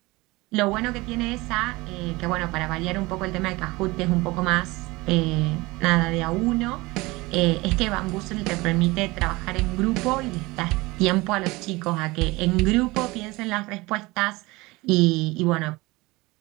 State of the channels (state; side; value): quieter; left; 22.2 dB